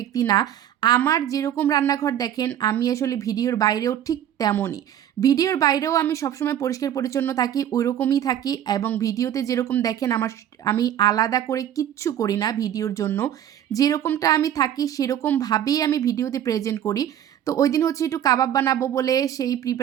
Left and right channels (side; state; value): left; quieter; 10.6 dB